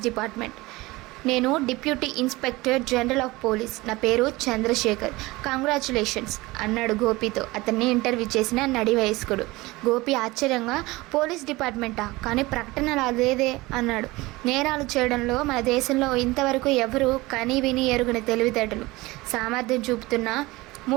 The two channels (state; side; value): quieter; left; 21.0 dB